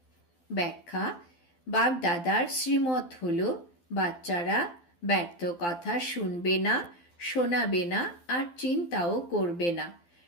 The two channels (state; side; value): late; right; 12 ms